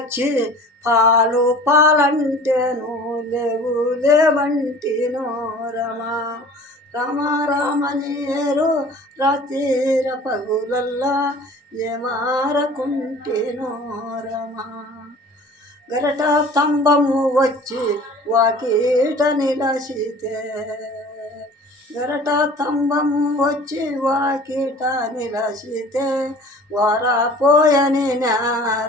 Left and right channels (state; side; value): normal; both; correlation 0.45